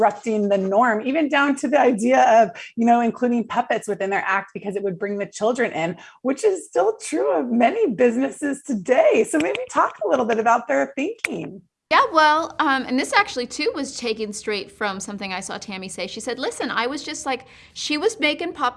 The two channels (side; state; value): both; identical; correlation 1.00